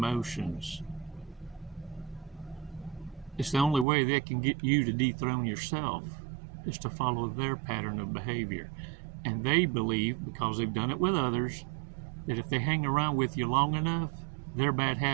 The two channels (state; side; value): drops out; left; at 3.9 s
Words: It's the only way they can get you to dethrone yourself, is to follow their pattern of behavior. And they believe, because they've done it with others, that if they hang around with you long enough, their bad